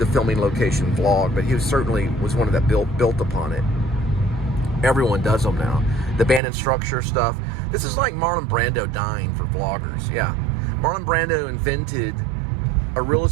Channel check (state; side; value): drops out; left; at 6.4 s